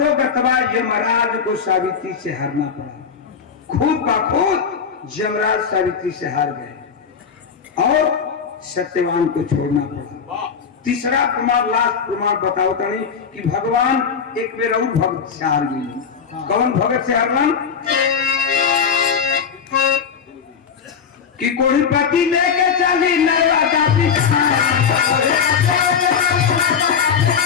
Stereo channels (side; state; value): right; quieter; 6.6 dB